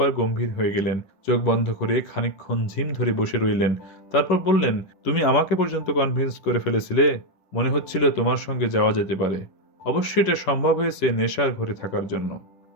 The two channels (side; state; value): right; late; 10 ms